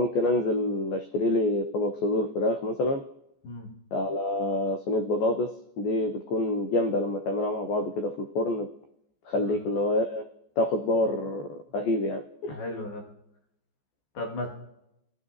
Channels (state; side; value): late; right; 14 ms